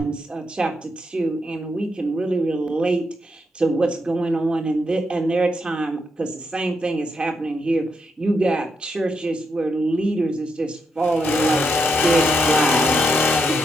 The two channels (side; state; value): both; normal; correlation 0.81